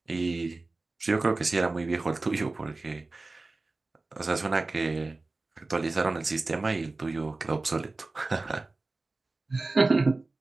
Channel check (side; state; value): left; quieter; 3.3 dB